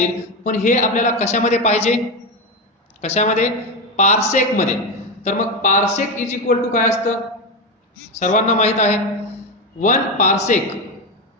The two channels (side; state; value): both; normal; correlation 0.13